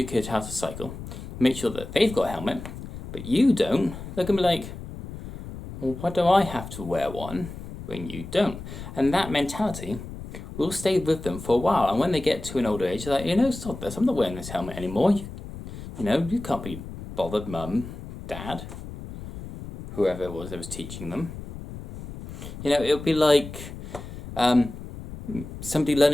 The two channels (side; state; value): left; noise; rumble, 11 dB below the sound